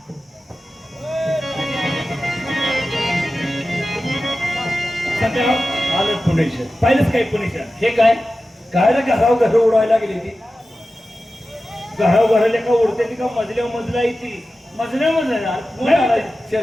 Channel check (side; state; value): both; normal; correlation 0.94